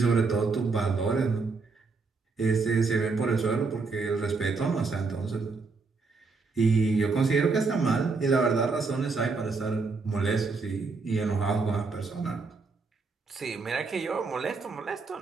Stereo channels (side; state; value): left; quieter; 4.2 dB